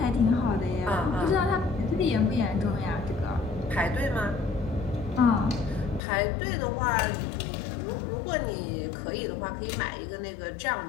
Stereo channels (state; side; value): drops out; right; at 6.0 s